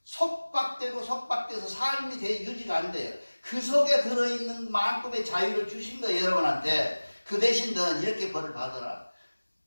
속박돼서 삶이 유지가 안 돼요. 그 속에 들어있는 만큼의 자유를 주신 거예요. 여러분한테. 그 대신 너는 이렇게 벌을 받아라.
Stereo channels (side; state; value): both; inverted; correlation -1.00